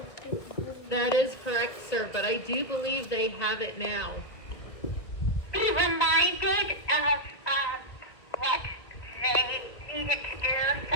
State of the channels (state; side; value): late; right; 2.2 ms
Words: That is correct, sir, but I do believe they have it now. Be reminded of what they needed to do.